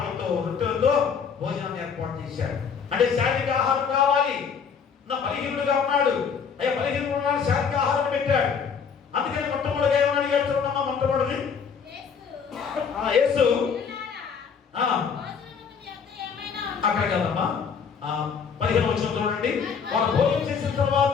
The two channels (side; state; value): right; quieter; 6.4 dB